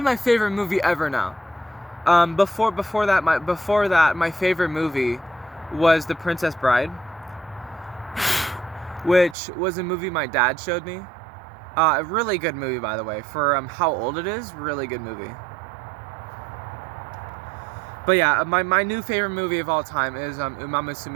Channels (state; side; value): drops out; left; at 9.3 s